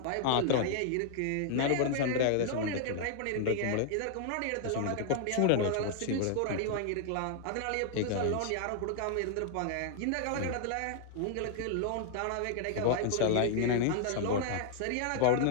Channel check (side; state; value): both; different; correlation -0.01